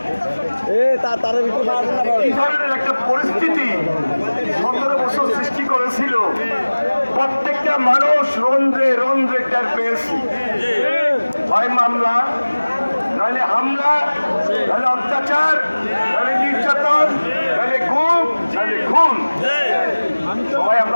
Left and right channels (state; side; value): inverted; both; correlation -1.00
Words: এই ধরনের একটা পরিস্থিতি 17 বছর সৃষ্টি করেছিল। প্রত্যেকটা মানুষ রন্ধ্রে রন্ধ্রে টের পেয়েছি। হয় মামলা, নাহলে হামলা, নাহলে অত্যাচার, নাহলে নির্যাতন, নাহলে গুম, নাহলে খুন। সবাই